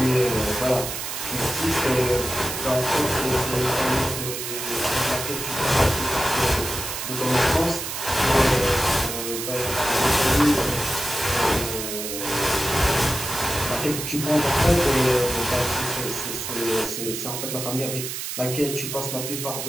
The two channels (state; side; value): noise; right; hiss, 5 dB below the sound